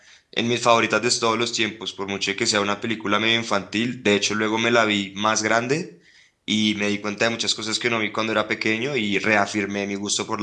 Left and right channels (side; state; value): both; identical; correlation 1.00